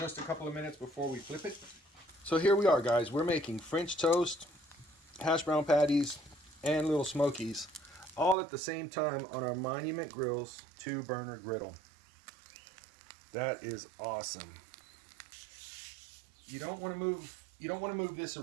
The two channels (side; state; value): left; drops out; at 8.3 s